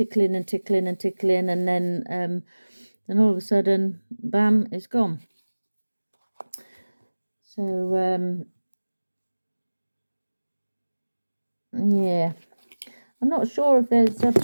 and tickling and tickling, and then all of a sudden, bam, it's gone. So yeah, I'm not sure if there's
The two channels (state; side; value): inverted; both; correlation -1.00